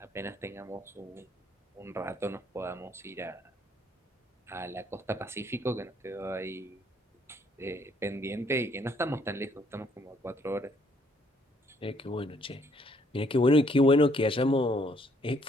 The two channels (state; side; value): normal; both; correlation 0.66